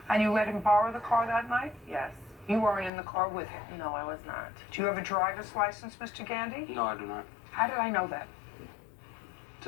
And you let him borrow the car that night? Yes. You weren't in the car with him? No, I was not. Do you have a driver's license, Mr. Gandy? No, I do not. How did I know that?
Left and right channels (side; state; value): right; drops out; at 2.9 s